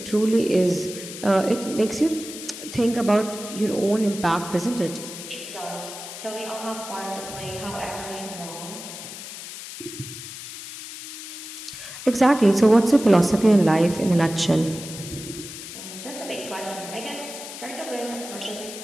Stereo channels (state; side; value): noise; left; hiss, 11 dB below the sound